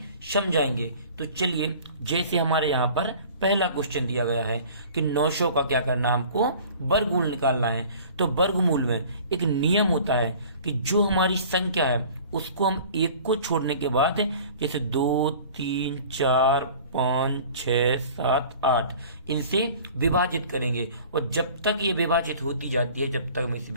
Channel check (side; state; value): both; inverted; correlation -0.46